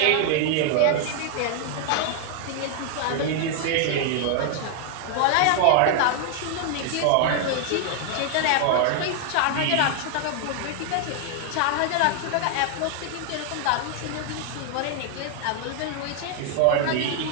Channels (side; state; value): both; different; correlation 0.00